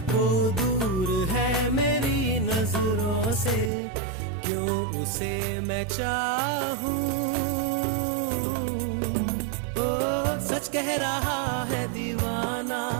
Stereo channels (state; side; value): drops out; left; at 3.7 s